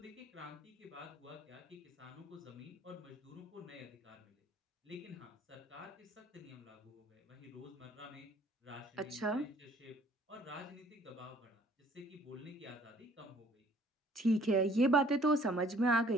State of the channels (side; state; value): both; normal; correlation 0.57